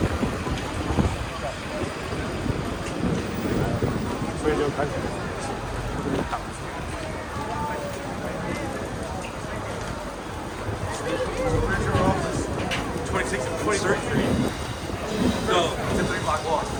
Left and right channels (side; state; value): both; identical; correlation 1.00